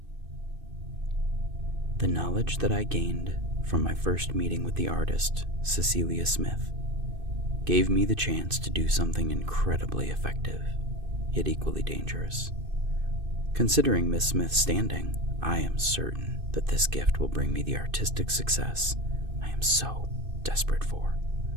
The knowledge that I gained from my first meeting with the artist, Cecilia Smith, gave me the chance to do something incredibly effective, yet equally dangerous. Considering Miss Smith's standing, I am certain that this gift will bring me the artistic success I am so desperate for.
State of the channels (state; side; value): late; left; 2.6 ms